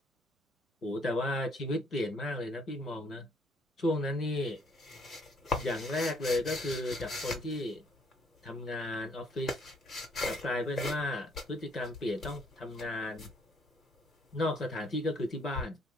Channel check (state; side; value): normal; both; correlation 0.65